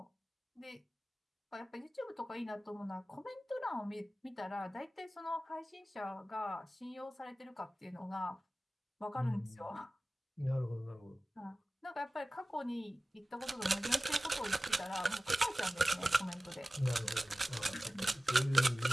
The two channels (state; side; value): normal; both; correlation 0.97